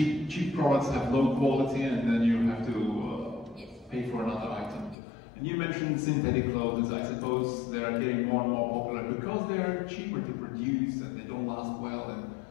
products have low quality and then you have to pay for another item. And you mentioned synthetic clothes. I suppose they are getting more and more popular because they're cheaper to produce and they don't last well and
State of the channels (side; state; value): right; drops out; at 5.0 s